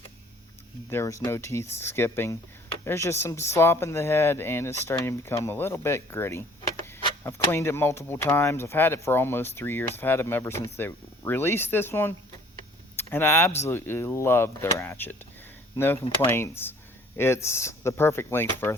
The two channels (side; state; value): both; normal; correlation 0.55